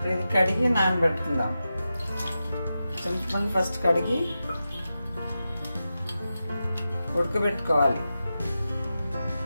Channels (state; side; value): inverted; both; correlation -0.92